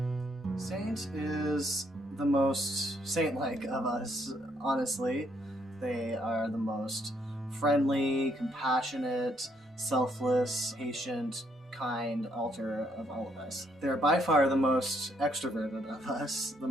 Saint is the most saint-like of us, honestly. They are the most friendly, compassionate, selfless, patient, kind altar of all of us. They're by far the most extroverted of us, the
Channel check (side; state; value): both; normal; correlation 0.72